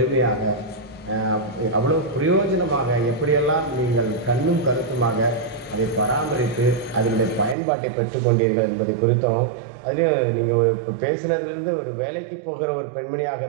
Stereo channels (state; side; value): drops out; left; at 7.6 s